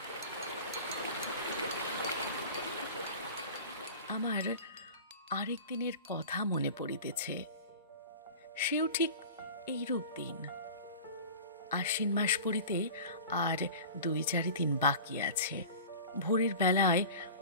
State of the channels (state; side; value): inverted; both; correlation -0.37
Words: আমার আরেক দিনের কথা মনে পড়িতেছে। সেও ঠিক এইরূপ দিন। আশ্বিন মাস পড়িতে আর ২-৪ দিন বাকি আছে। ভোরের বেলায়